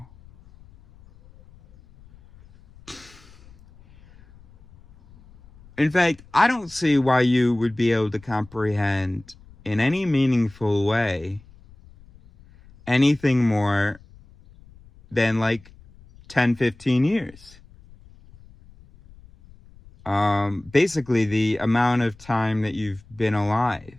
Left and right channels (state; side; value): noise; left; rumble, 25 dB below the sound